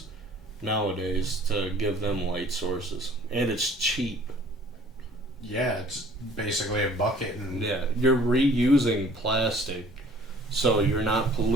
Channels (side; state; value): both; normal; correlation 0.53